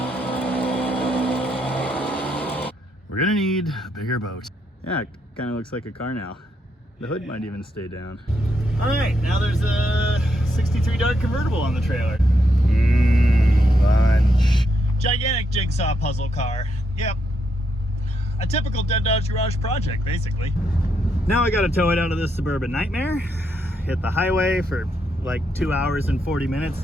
We're gonna need a bigger boat. Yeah, it kind of looks like a car now. The hood might even stay down. All right, now there's a 63 Dart convertible on the trailer. Lunch. Gigantic jigsaw puzzle car. Yep. A typical Dead Dodge Garage project, basically. Now I gotta tow it out of this suburban nightmare, hit the highway for like 2 hours and 40 minutes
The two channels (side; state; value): both; normal; correlation 0.79